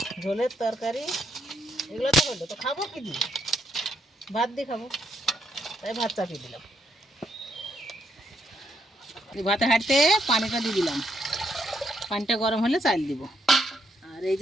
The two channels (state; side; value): normal; both; correlation 0.75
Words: ঝোলের তরকারি, এগুলো তো হলো, তো খাবো কি দিয়ে? ভাত দিয়ে খাবো, তাই ভাত চাপিয়ে দিলাম। ভাতের হাঁড়িতে পানিটা দিয়ে দিলাম, পানিটা গরম হলে চাল দিব। আর এই